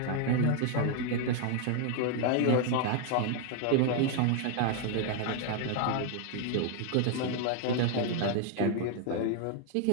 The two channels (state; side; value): different; both; correlation 0.00